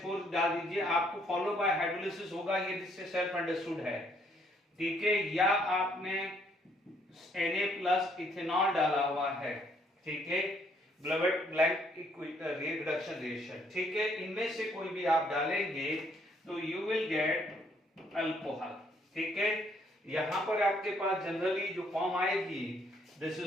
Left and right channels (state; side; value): normal; both; correlation 0.68